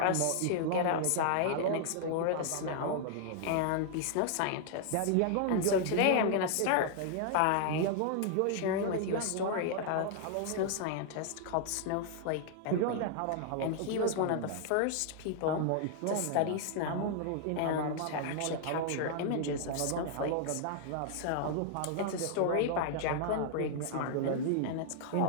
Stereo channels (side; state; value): both; different; correlation -0.01